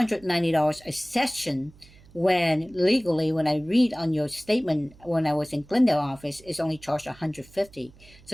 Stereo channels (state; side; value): noise; right; hum, 25 dB below the sound